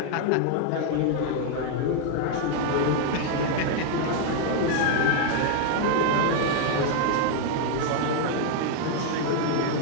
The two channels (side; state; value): both; different; correlation 0.00